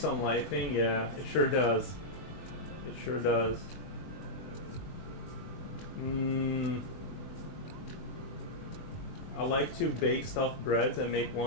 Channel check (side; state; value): right; late; 21 ms